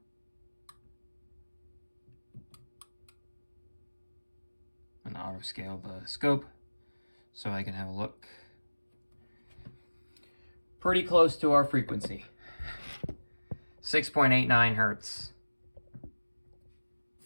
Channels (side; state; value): both; inverted; correlation -1.00